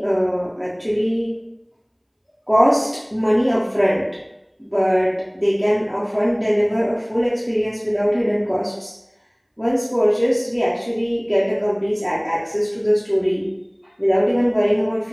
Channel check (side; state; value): both; identical; correlation 1.00